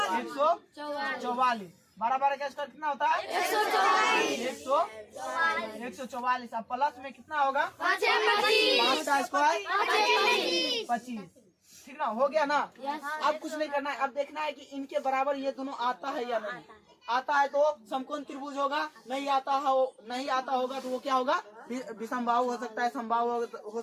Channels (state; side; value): identical; both; correlation 1.00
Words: 12 का स्क्वायर कितना होता है 144। अब प्लस में कितना होगा 5 का स्क्वायर 25, ठीक ना, हो गया ना। अब कुछ नहीं करना है, अब देखना है कि इनके बराबर ये दोनों आता है या नहीं। आता है तो समकोण त्रिभुज होगा, नहीं आता होगा तो वो क्या होगा विषमबाहु हो सकता है, समबाहु हो